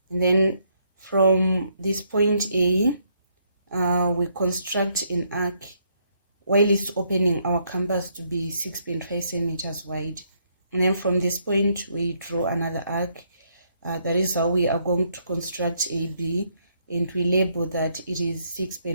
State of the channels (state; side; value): inverted; both; correlation -0.73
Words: And then from this point A, we construct an arc while it's opening our canvas to be 6.5 centimeters wide. And then from this point, we draw another arc. That is how we are going to construct AB, and we label that it is